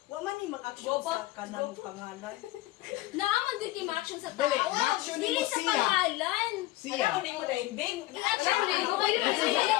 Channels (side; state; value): right; quieter; 17.9 dB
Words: Wa man ni mag-action sa kanang pangalan. Naaman din yung action sa Dali, tao. ma-action Dili mo sa siya. pangalan. Siya. Hindi ko na imbing. I-action mo. Ikaw kayo na siya.